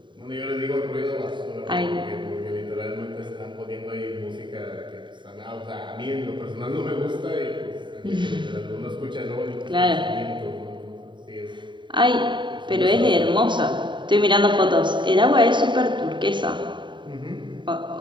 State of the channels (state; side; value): late; left; 0.23 ms